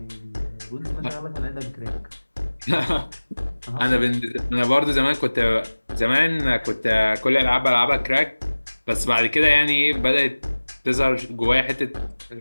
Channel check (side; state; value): both; inverted; correlation -1.00